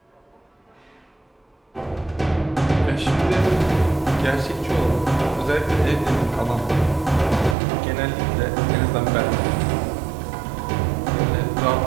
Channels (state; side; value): drops out; left; at 7.6 s